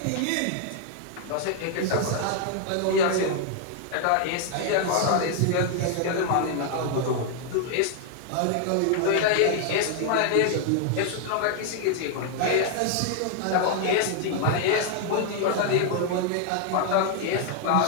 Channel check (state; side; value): different; both; correlation 0.00